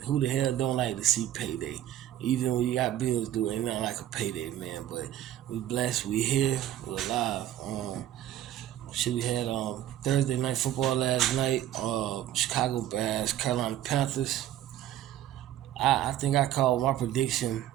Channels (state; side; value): quieter; left; 12.5 dB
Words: who the hell don't like to see payday? Even when you got bills due, ain't nothing like a payday, man. But we blessed, we here, we're alive. We had Thursday night football last night. Chicago Bears, Carolina Panthers. I think I called my prediction.